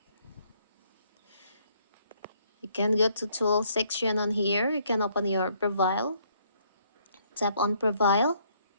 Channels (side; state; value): both; inverted; correlation -0.67